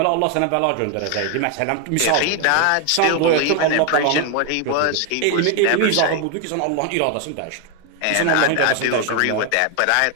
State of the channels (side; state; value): both; different; correlation 0.01